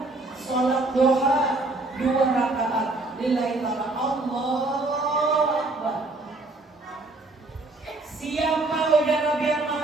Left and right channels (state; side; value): quieter; left; 3.0 dB